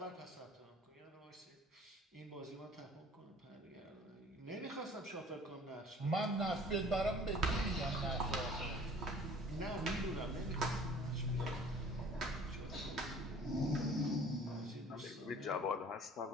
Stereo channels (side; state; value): both; normal; correlation 0.50